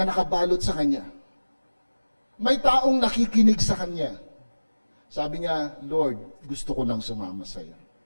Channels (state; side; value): inverted; both; correlation -1.00